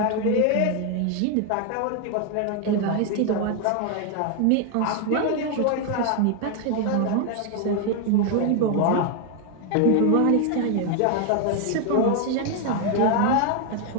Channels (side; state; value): both; different; correlation 0.01